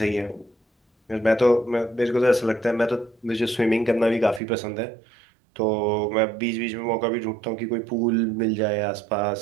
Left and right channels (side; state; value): left; drops out; at 4.4 s